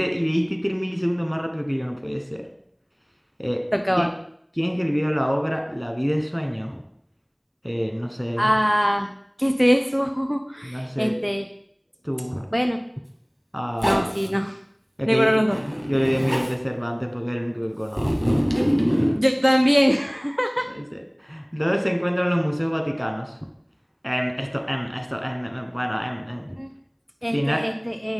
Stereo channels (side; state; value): both; identical; correlation 1.00